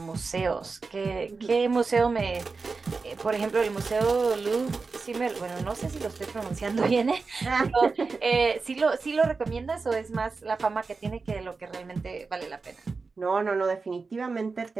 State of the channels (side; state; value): left; quieter; 4.3 dB